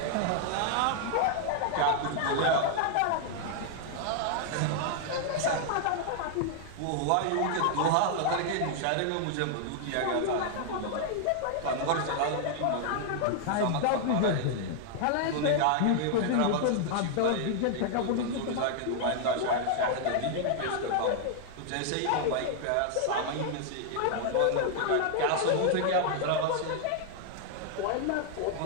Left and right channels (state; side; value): different; both; correlation 0.00